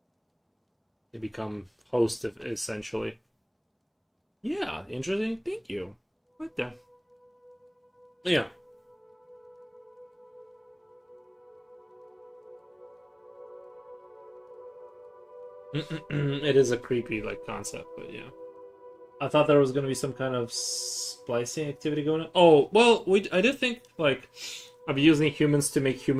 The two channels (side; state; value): both; identical; correlation 1.00